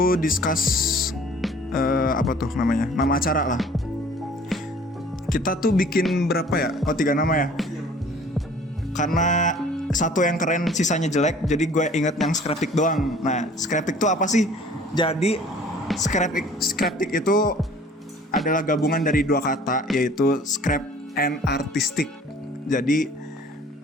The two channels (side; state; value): both; normal; correlation 0.51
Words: discuss apa tuh namanya, nama acara lah. Kita tuh bikin berapa ya? Oh 3 nama ya. Karena satu yang keren sisanya jelek, jadi gue inget yang Scraptic doang. Nah, Scraptic tuh apa sih? Jadi Scraptic itu adalah gabungan dari 2 kata, yaitu scrap and artistic. Jadi